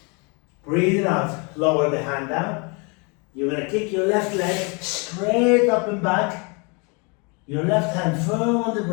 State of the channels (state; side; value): quieter; right; 32.1 dB